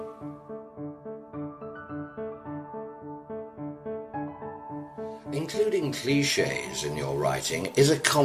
Including cliches in your writing is a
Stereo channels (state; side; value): identical; both; correlation 1.00